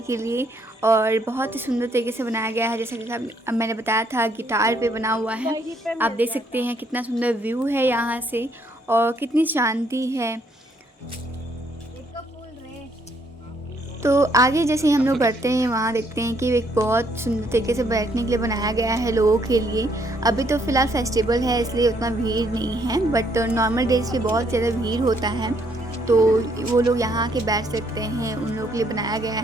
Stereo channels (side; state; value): both; normal; correlation 0.70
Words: के लिए। और बहुत ही सुंदर तरीके से बनाया गया है, जैसा कि अब मैंने बताया था गिटार पे बना हुआ है। आप देख सकते हैं कितना सुंदर व्यू है यहाँ से और कितनी शांति है। तो आगे जैसे हम लोग बढ़ते हैं वहाँ देखते हैं कि एक बहुत सुंदर तरीके से बैठने के लिए बनाया गया है लोगों के लिए। अभी तो फ़िलहाल फेस्टिवल है इसलिए उतना भीड़ नहीं है, बट नॉर्मल डेज पे बहुत ज़्यादा भीड़ होता है, तो वो लोग यहाँ आके बैठ सकते हैं, उन लोगों के लिए बनाया गया